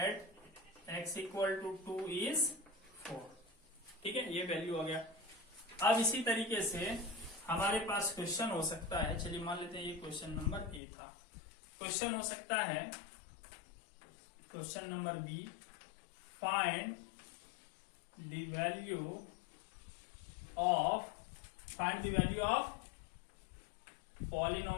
x equal to 2 is 4, ठीक है। ये वैल्यू आ गया। अब इसी तरीके से हमारे पास क्वेश्चन हो सकता है, चलिए मान लेते हैं ये क्वेश्चन नंबर ए था। क्वेश्चन हो सकता है question number B, find the value of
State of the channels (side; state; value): right; drops out; at 10.8 s